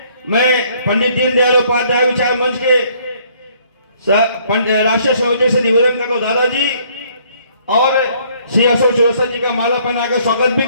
मैं पंडित दीनदयाल उपाध्याय विचार मंच के राष्ट्रीय संयोजक से निवेदन करता हूं दादाजी और श्री अशोक चौरसिया जी का माला पहनाकर स्वागत भी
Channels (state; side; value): inverted; both; correlation -0.63